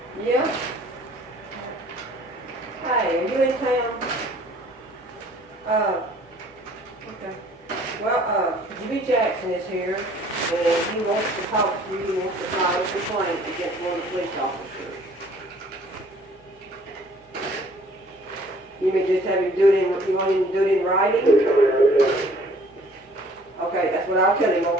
Yeah. Hey, are you in town? Okay. Well, Jimmy Jackson is here, and he wants to talk to you. He wants to file a complaint against one of the police officers. You may just have him do it in, you want him to do it in writing? Okay, that's what I'll tell him,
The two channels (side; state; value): both; normal; correlation 0.55